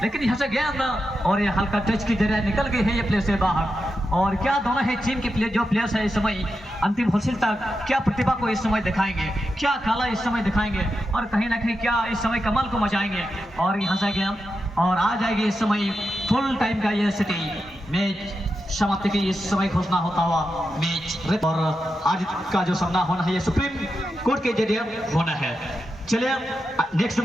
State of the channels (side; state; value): both; normal; correlation 0.88